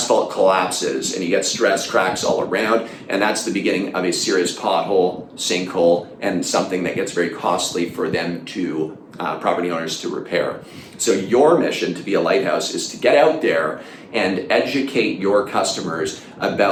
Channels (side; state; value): both; identical; correlation 1.00